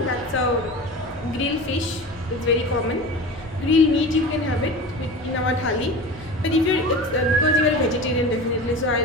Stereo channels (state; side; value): normal; both; correlation 0.33